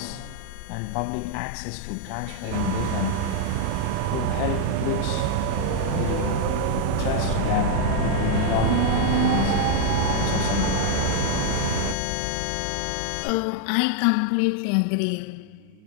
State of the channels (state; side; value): different; both; correlation 0.00